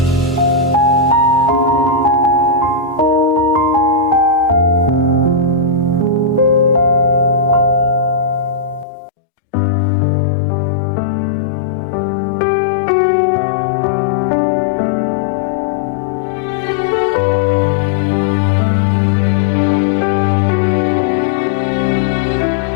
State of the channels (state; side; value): drops out; right; at 8.8 s